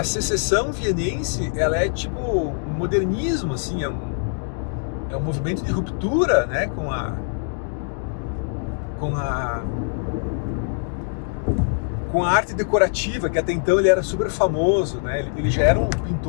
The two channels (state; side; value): silent; right; digital silence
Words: secessão vienense, ela é tipo um modernismo, assim, é um movimento de ruptura, né, com a arte decorativa, que até então ele era super famoso, né? Ele já era um